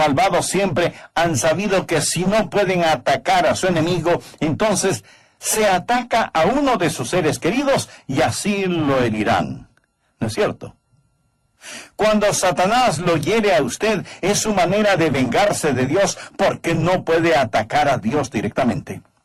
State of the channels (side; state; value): both; identical; correlation 1.00